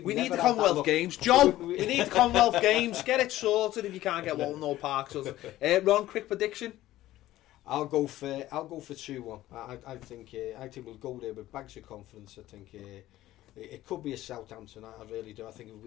need the Commonwealth Games, Joe. We need the Commonwealth Games. Get it sorted if you can't get Walton or Park. So, Ron, quick prediction. I'll go for 2-1. I think we'll go there with bags of confidence. I think it could be a Southampton. I really do. I think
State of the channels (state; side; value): quieter; right; 15.1 dB